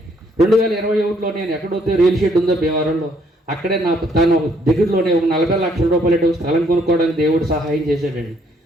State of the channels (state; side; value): normal; both; correlation 0.67